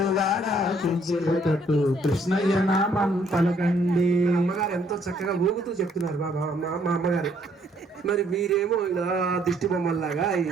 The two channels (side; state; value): both; normal; correlation 0.65